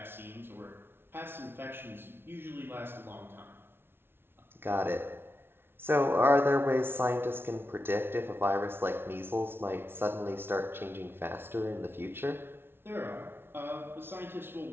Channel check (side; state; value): left; late; 0.11 ms